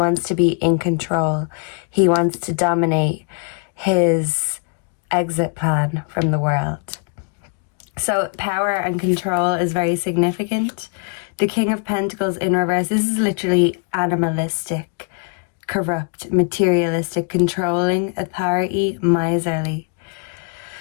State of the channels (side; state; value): right; quieter; 38.0 dB